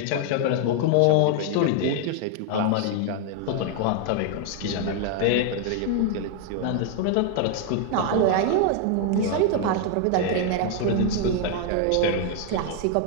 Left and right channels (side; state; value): both; different; correlation 0.00